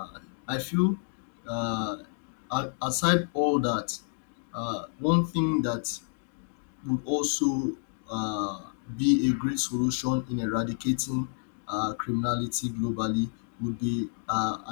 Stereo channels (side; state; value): right; silent; digital silence